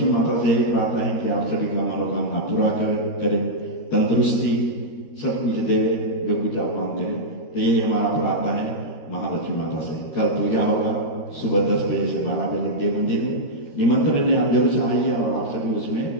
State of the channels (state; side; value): late; right; 13 ms